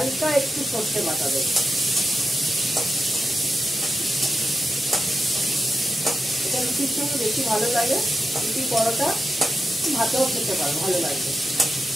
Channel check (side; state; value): both; normal; correlation 0.89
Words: একটু সর্ষে বাটা দেবো। এটা রুটির সঙ্গে বেশি ভালো লাগে। রুটি, পরোটা ভাতেও খেতে পারো, ভালো লাগবে।